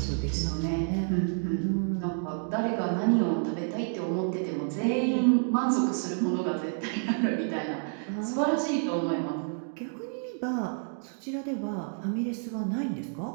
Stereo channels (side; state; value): left; silent; 58 dB below the other